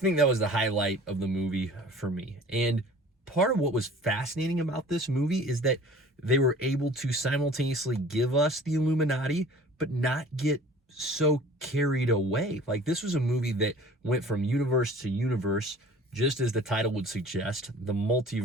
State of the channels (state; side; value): normal; both; correlation 0.46